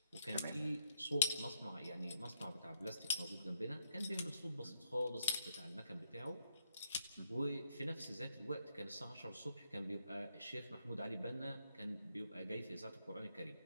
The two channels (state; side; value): inverted; both; correlation -0.76